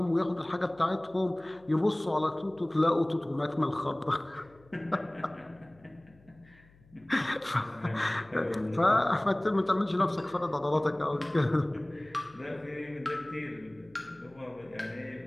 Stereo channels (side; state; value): left; noise; hum, 28 dB below the sound